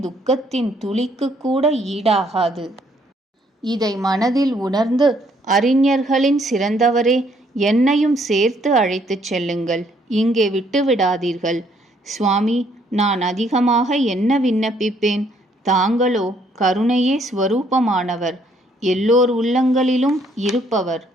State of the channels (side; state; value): both; normal; correlation 0.67